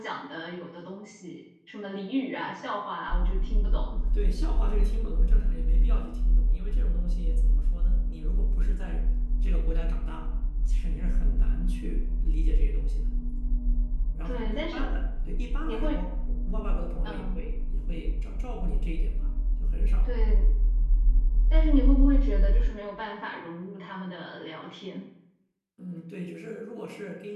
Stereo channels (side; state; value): both; identical; correlation 1.00